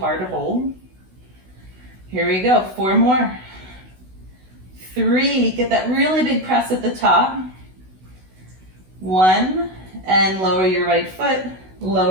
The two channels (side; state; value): left; late; 16 ms